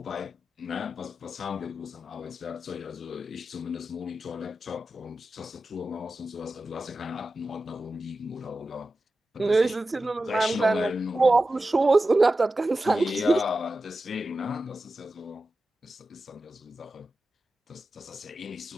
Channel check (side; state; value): both; normal; correlation 0.93